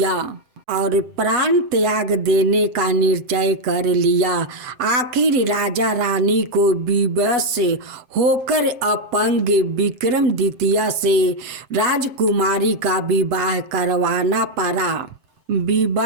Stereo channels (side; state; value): left; late; 7.7 ms